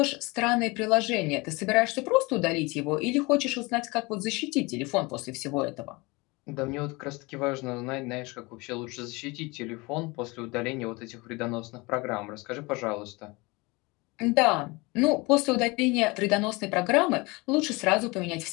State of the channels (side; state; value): right; quieter; 25.0 dB